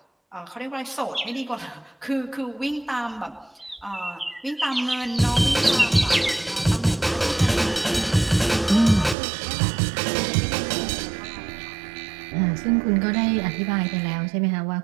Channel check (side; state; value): left; drops out; at 9.2 s